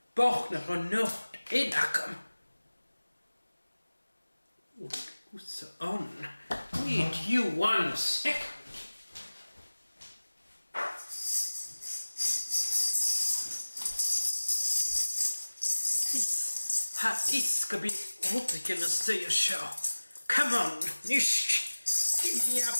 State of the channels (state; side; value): inverted; both; correlation -1.00